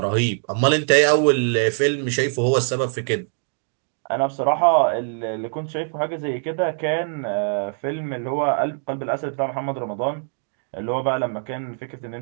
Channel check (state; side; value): silent; left; digital silence